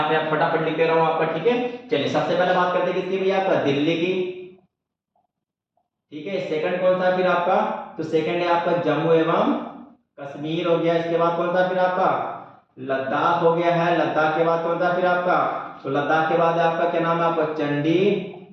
फटाफट लिख दे रहा हूँ आपका, ठीक है। चलिए सबसे पहले बात करते हैं किसकी भैया आपका? दिल्ली की, ठीक है। सेकंड कौन सा फिर आपका? तो सेकंड है आपका जम्मू एवं कश्मीर हो गया। इसके बाद कौन सा फिर आपका? लद्दाख हो गया है। लद्दाख के बाद कौन सा फिर आपका? तो लद्दाख के बाद आपका क्या नाम है आपका?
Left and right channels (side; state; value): both; identical; correlation 1.00